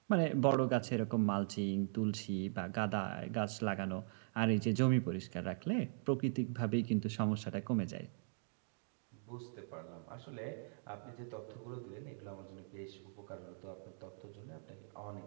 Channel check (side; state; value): left; silent; digital silence